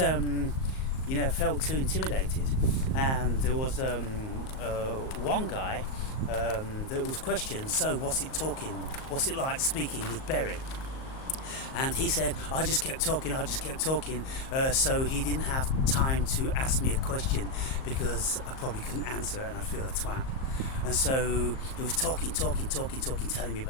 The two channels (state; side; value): late; right; 38 ms